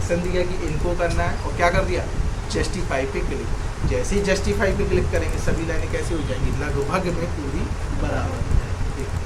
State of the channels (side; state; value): both; identical; correlation 1.00